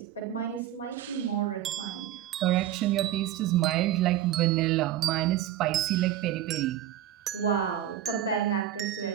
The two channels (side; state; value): left; quieter; 12.0 dB